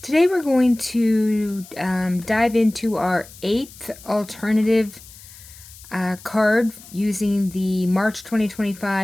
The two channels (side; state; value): left; noise; hiss, 20 dB below the sound